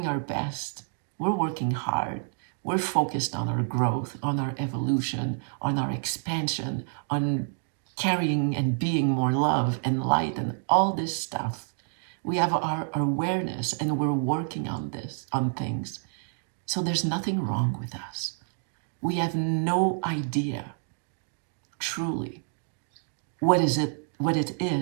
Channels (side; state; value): left; silent; 59 dB below the other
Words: our best. We're working hard. We're focused on our growth, on our evolution, on our expansion, on carrying and being more love and light and all this stuff. We have our awareness and we're working on things. So there's nothing wrong with us. We have no idea, truly, what it